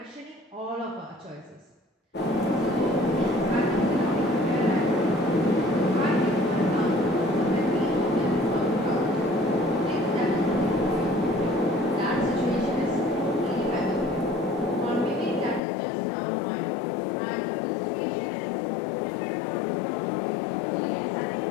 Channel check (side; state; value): right; drops out; at 15.6 s